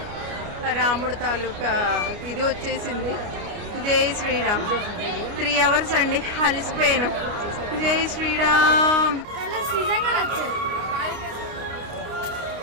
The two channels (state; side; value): late; left; 29 ms